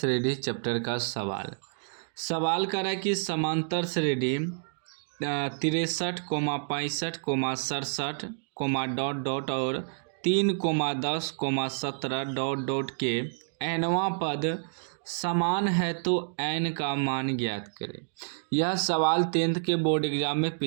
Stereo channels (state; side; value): silent; left; digital silence